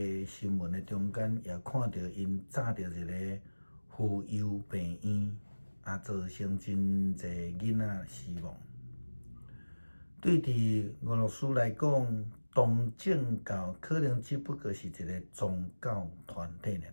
新闻的中间，也看到因炸着一个妇幼病院，造成真侪囡仔死亡。对伫俄罗斯来讲，东正教可能只不过是一个宗教团体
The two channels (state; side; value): inverted; both; correlation -1.00